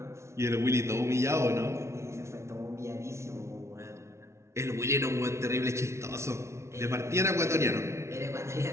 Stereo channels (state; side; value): late; left; 0.13 ms